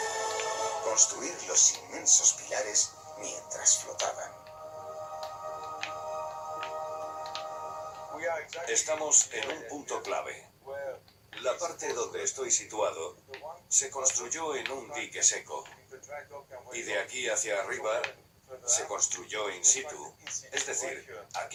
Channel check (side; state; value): both; identical; correlation 1.00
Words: Construir los inmensos pilares mientras flotaban. Estamos en un punto clave. La parte donde estoy situado se construyó en un dique seco. Y de aquí hacia arriba se construyó in situ, es decir,